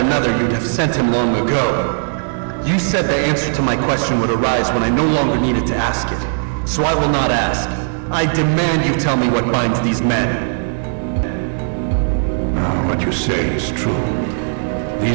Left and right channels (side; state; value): left; silent; digital silence